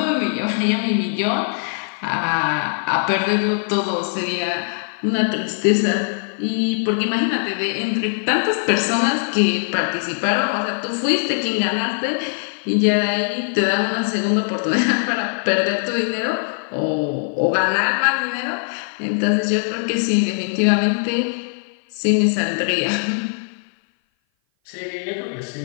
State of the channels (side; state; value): right; silent; 57 dB below the other